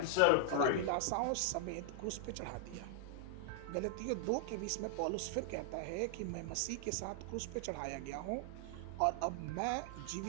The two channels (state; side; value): different; both; correlation 0.00